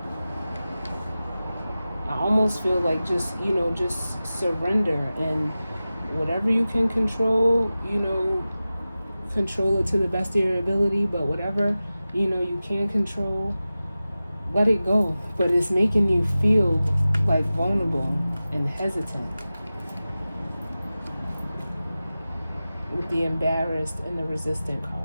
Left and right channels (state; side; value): inverted; both; correlation -0.95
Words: I almost feel like just surrender, and whatever you can control, control it to the best of your ability, but whatever, you can't control, let it go. But it's making you feel like vulnerable and hesitant with the embarrassed and the resistant